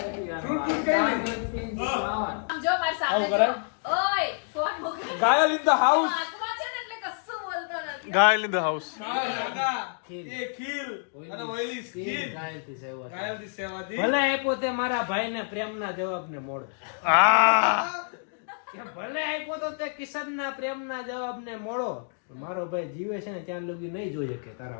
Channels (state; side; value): silent; right; digital silence